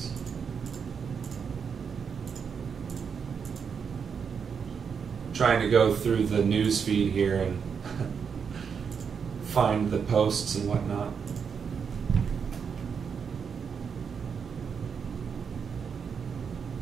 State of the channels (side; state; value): left; quieter; 6.5 dB